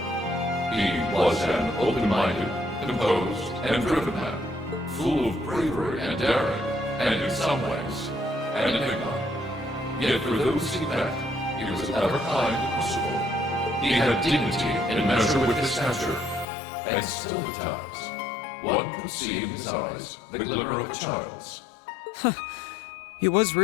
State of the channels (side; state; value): right; drops out; at 16.4 s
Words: He was an open-minded, composed, and driven man, full of bravery and daring, and in some ways, an enigma. Yet for those he met, he was ever kind and merciful. He had dignity in measure with his stature, and still at times, one could see in his eyes the glimmer of a child's. He was